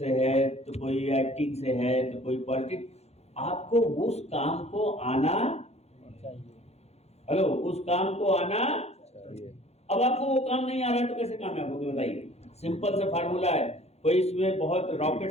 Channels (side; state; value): right; late; 0.31 ms